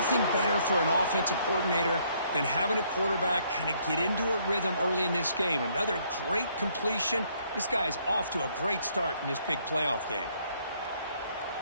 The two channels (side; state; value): both; inverted; correlation -0.67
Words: better for an offensive coordinator than having a quarterback kind of get into a rhythm early in this game. Another great completion. This guy is off to a great start in this big playoff game.